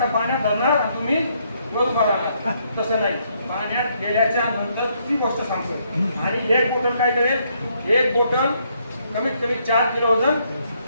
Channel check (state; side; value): inverted; both; correlation -0.72